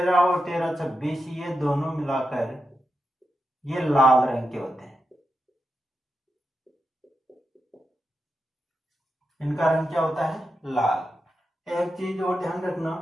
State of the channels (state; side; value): normal; both; correlation 0.88